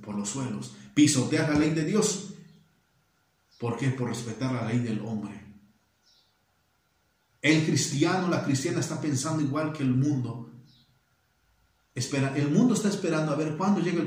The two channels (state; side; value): identical; both; correlation 1.00